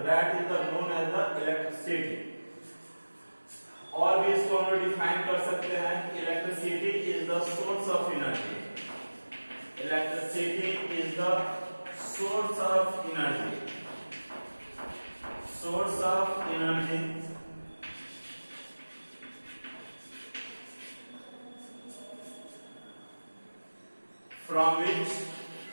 that is the known as the electricity. और भी इसको हम लोग डिफाइन कर सकते हैं कि electricity is the source of energy. Electricity is the source of energy. From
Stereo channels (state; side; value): inverted; both; correlation -1.00